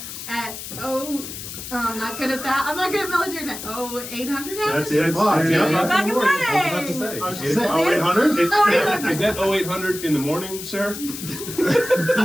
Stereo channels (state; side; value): noise; left; hiss, 10 dB below the sound